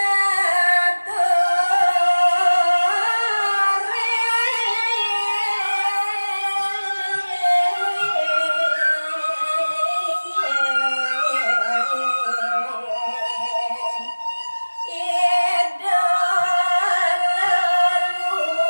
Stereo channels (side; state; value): both; inverted; correlation -1.00